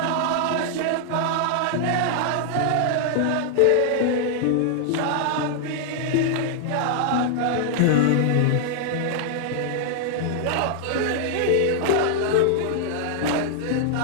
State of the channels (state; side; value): different; both; correlation 0.00